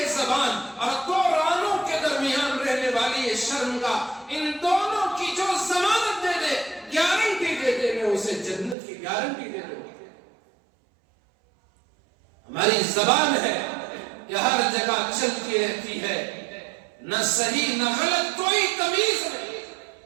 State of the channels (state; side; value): drops out; left; at 8.8 s